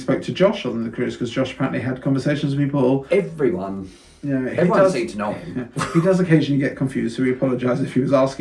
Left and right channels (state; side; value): identical; both; correlation 1.00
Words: to Josh on the cruise because Josh apparently had conversations with people. Everyone. Everyone seemed to know him. He does occasionally get confused, so we apologise if he was